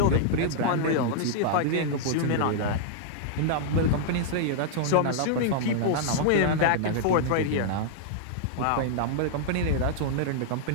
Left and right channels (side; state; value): both; different; correlation -0.01